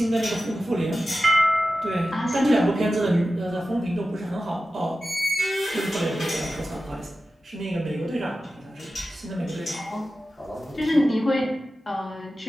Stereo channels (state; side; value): normal; both; correlation 0.93